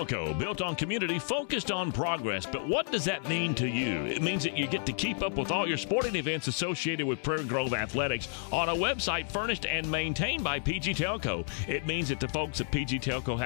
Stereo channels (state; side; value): silent; right; digital silence